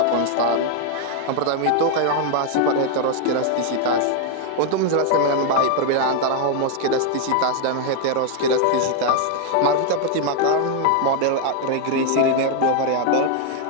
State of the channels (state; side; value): different; both; correlation 0.00